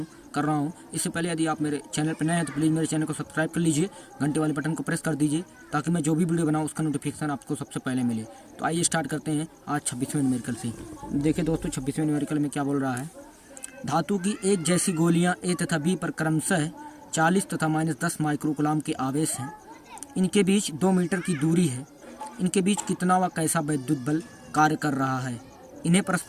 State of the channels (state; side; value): identical; both; correlation 1.00